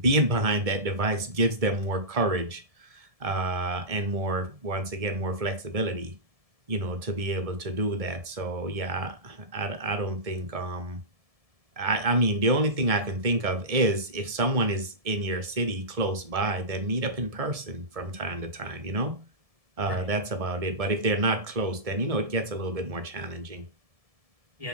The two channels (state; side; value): late; left; 1.7 ms